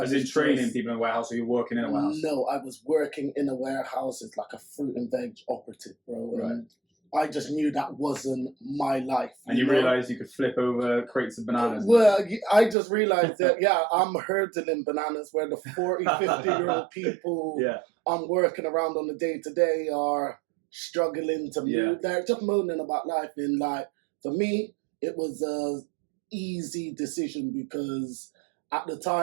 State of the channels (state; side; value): drops out; left; at 12.8 s